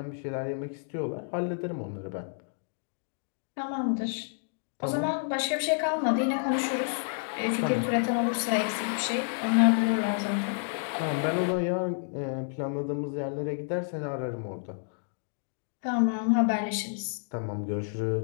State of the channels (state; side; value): silent; right; digital silence